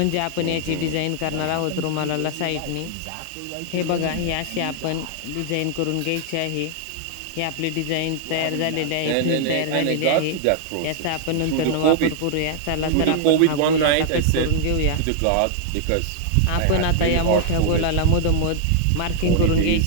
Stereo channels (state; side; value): different; both; correlation -0.01